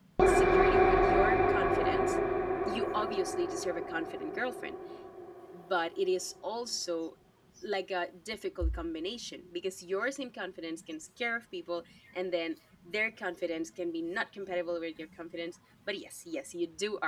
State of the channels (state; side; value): identical; both; correlation 1.00